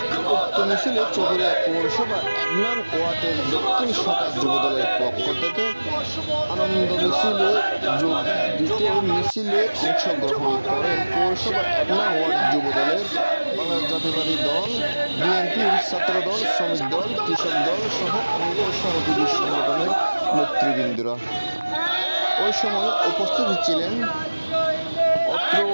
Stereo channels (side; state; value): both; inverted; correlation -1.00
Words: উক্ত মিছিলে চকরিয়া পৌরসভা 1 নং ওয়ার্ডের দক্ষিণ শাখা যুব দলের পক্ষ থেকে আনন্দ মিছিলে যোগ দিতে মিছিলে অংশগ্রহণ করেন পৌরসভা 1 নং ওয়ার্ড যুব দলের বাংলাদেশ জাতীয়তাবাদী দল, বিএনপির ছাত্রদল, শ্রমিক দল, কৃষক দল সহ অঙ্গ সহযোগী সংগঠনের নেতৃবৃন্দরা। ওই সময় উপস্থিত ছিলেন অত্র